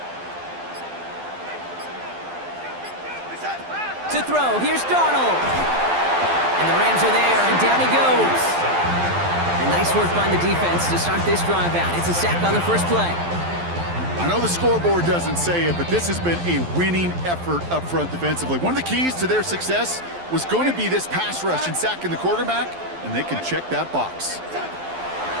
To throw, here's Darnold. And the Rams are there, and down he goes. And nice work by the defense to start this drive out. It's a sack on the first play. I know the scoreboard doesn't say it, but this has been a winning effort up front defensively. One of the keys to their success was going to be this pass rush and sacking the quarterback, and they can check that box.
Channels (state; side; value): late; left; 12 ms